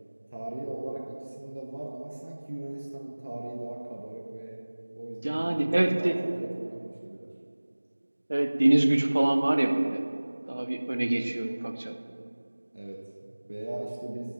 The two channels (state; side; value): inverted; both; correlation -1.00